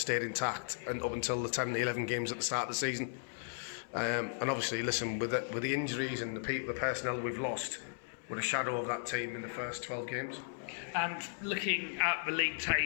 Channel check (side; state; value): right; silent; 54 dB below the other